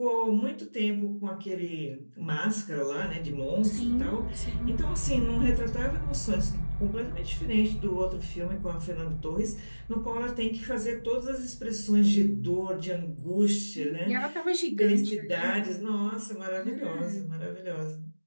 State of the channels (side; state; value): both; inverted; correlation -1.00